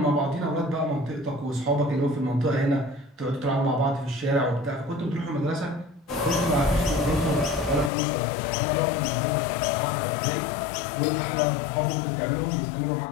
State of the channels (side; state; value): right; drops out; at 7.9 s